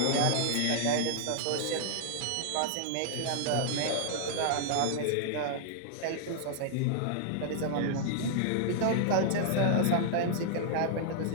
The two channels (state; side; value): different; both; correlation -0.01